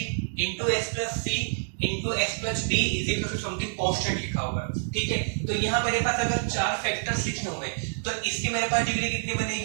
into x plus c into x plus d is equal to something constant लिखा हुआ है, ठीक है। तो यहाँ मेरे पास अगर 4 फैक्टर्स लिखे होंगे तो इसकी मेरे पास डिग्री कितनी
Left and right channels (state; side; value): silent; left; digital silence